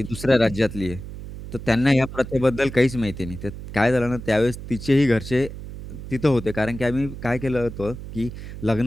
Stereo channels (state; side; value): noise; right; hum, 11 dB below the sound